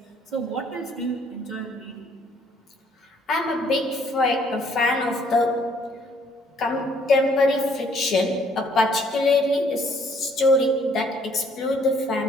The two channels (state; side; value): normal; both; correlation 0.63